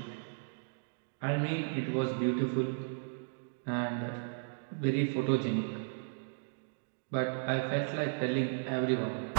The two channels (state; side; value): silent; left; digital silence